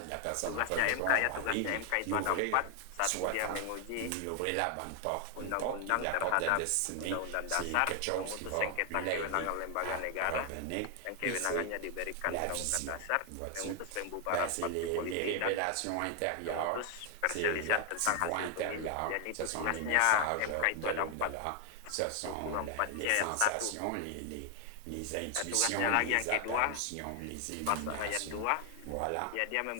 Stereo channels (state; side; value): different; both; correlation 0.00